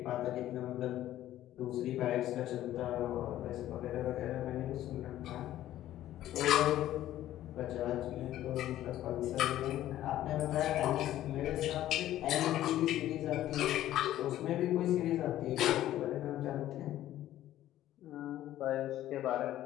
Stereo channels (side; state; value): right; quieter; 13.4 dB